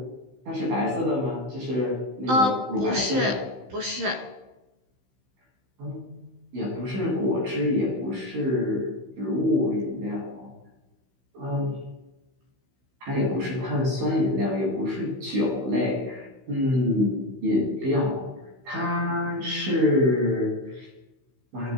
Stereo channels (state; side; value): late; left; 16 ms